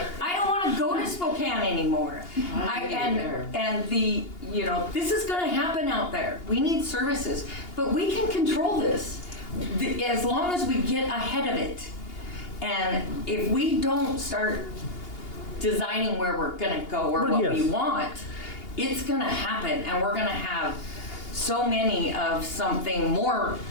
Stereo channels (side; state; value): right; late; 2.8 ms